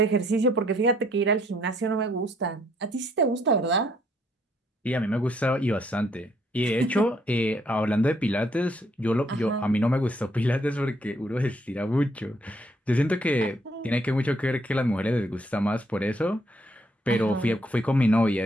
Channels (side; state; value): both; normal; correlation 0.69